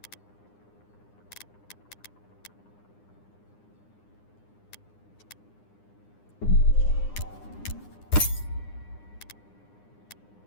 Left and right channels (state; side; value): late; right; 9.8 ms